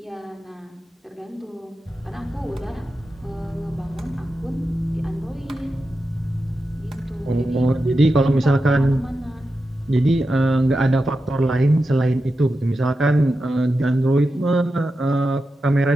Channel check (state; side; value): normal; both; correlation 0.90